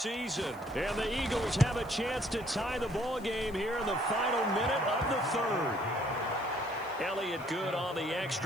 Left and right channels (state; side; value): noise; left; hiss, 24 dB below the sound